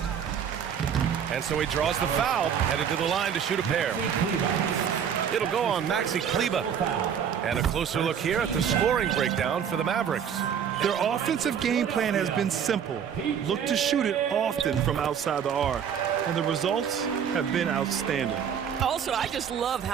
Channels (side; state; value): left; quieter; 8.1 dB